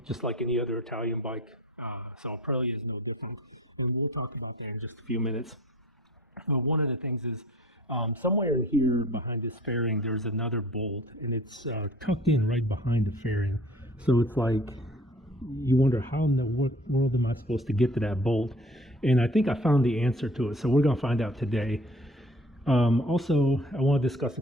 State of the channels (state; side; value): normal; both; correlation 0.49